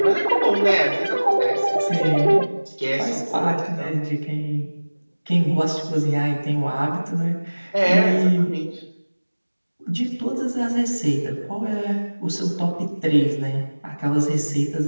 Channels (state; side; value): inverted; both; correlation -1.00